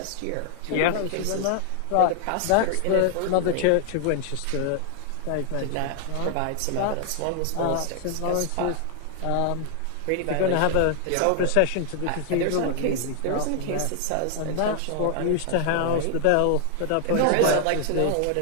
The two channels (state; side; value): different; both; correlation 0.00